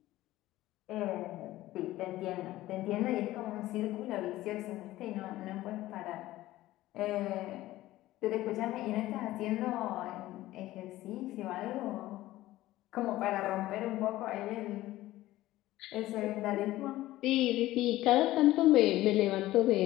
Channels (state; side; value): quieter; right; 16.1 dB